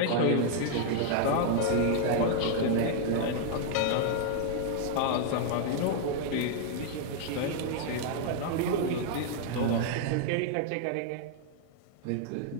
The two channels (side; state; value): both; different; correlation -0.01